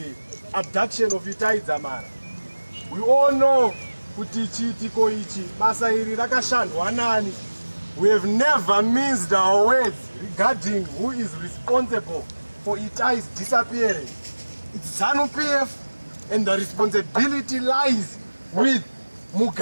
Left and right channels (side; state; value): both; inverted; correlation -1.00